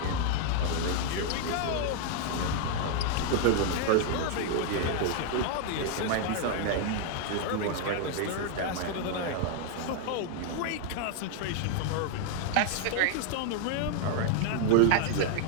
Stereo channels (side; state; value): both; different; correlation 0.00